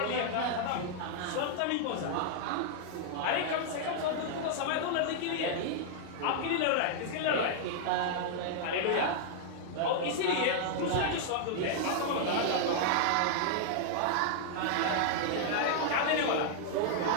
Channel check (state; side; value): different; both; correlation -0.01